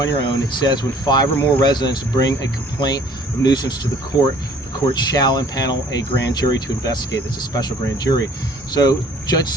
your own, it says when 5 or more residents bring a complaint of nuisance to the court shall impanel a grand jury to investigate. It's a special grand jury. So Judge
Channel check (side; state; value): both; normal; correlation 0.55